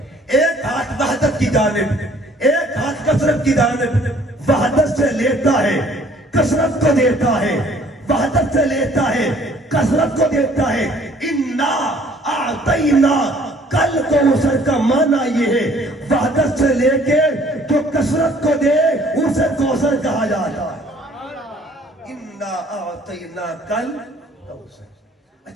ایک ہاتھ وحدت کی جانب، ایک ہاتھ کثرت کی جانب. وحدت سے لیتا ہے کثرت کو دیتا ہے، وحدت سے لیتا ہے کثرت کو دیتا ہے. انا اعطینا کل کوثر کا معنی یہ ہے وحدت سے لے کے جو کثرت کو دے اسے کوثر کہا جاتا ہے. انا اعطینا کل کوثر.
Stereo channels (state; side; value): normal; both; correlation 0.57